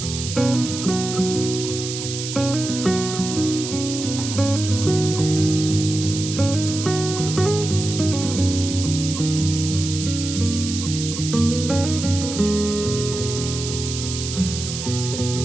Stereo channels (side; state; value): right; noise; hiss, 7 dB below the sound